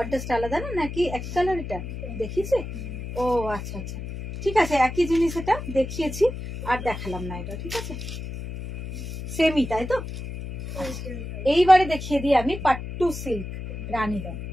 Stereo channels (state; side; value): noise; left; hum, 8 dB below the sound